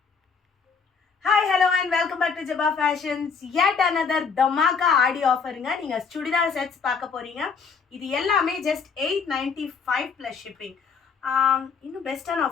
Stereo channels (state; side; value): quieter; right; 5.6 dB